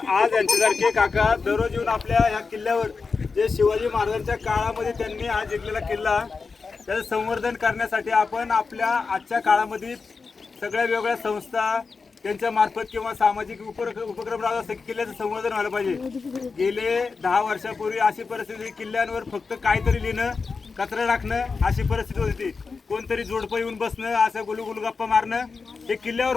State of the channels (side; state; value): right; quieter; 4.7 dB